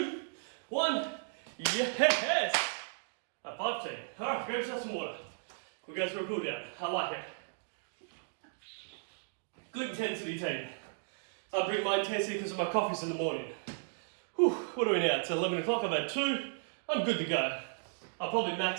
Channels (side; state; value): left; silent; digital silence